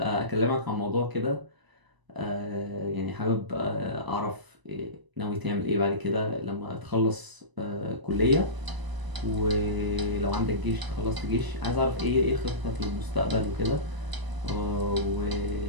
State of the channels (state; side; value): late; left; 1.0 ms